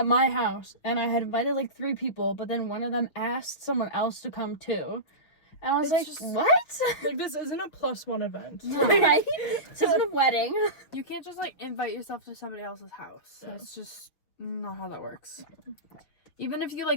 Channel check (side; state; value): right; late; 6.4 ms